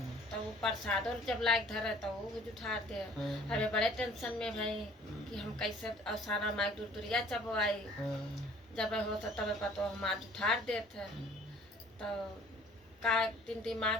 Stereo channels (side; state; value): both; normal; correlation 0.53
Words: तो वो प्रसादों जब लायक धरे तो वो भी उठा दे। अबे बड़े टेंशन में भाई कि हम कैसे साना माई दूरिया चपवाई। जब हो तो तब पतो हमार उठार देते। तो का दिन